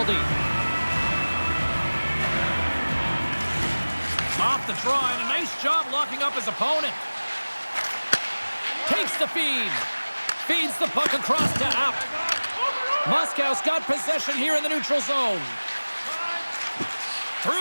Off the draw, and a nice job locking up his opponent. Takes the feed. Feeds the puck across to App. Moscow's got possession here in the neutral zone.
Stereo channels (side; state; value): both; inverted; correlation -1.00